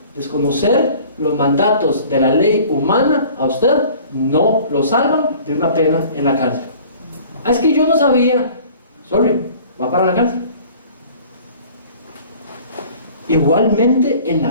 Desconocer los mandatos de la ley humana a usted no lo salvan de una pena en la cárcel. Es que yo no sabía. Sorry, va para la cárcel. Igualmente en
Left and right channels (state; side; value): inverted; both; correlation -0.49